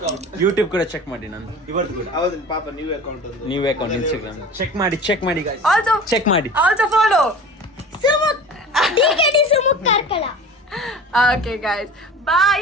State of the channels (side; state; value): both; normal; correlation 0.38